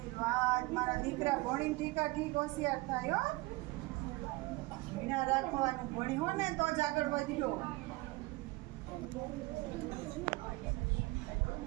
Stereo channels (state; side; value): quieter; left; 22.6 dB